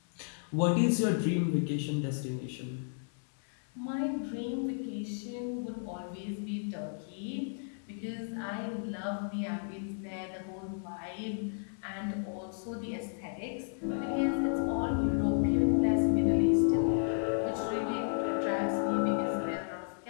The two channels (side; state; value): right; silent; digital silence